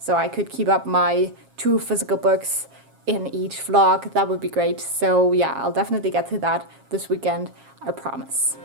I could keep up my 2 physical books in each vlog. That would be great. So yeah, I'll definitely get to that this weekend, I promise.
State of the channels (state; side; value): late; left; 7.4 ms